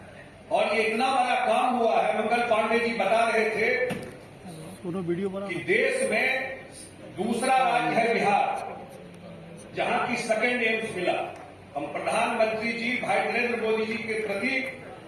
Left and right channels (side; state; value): both; identical; correlation 1.00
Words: और ये इतना बड़ा काम हुआ है। मंगल पांडे जी बता रहे थे कि देश में दूसरा राज्य है बिहार जहां की सेकेंड एम्स मिला। हम प्रधानमंत्री जी भाई नरेंद्र मोदी जी के प्रति